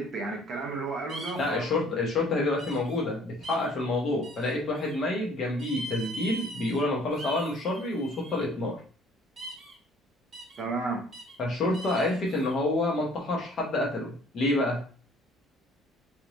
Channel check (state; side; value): normal; both; correlation 0.55